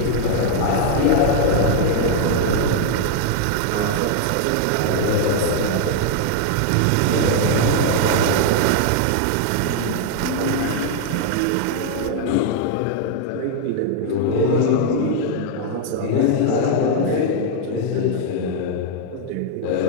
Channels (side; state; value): both; different; correlation 0.00